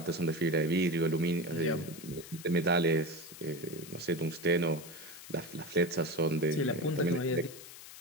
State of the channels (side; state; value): left; noise; hiss, 15 dB below the sound